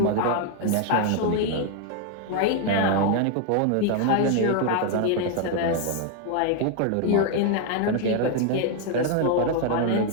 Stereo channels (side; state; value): both; different; correlation 0.01